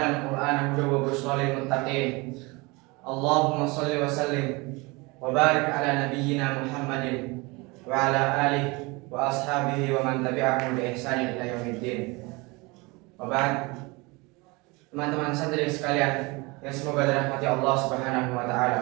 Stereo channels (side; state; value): left; quieter; 25.6 dB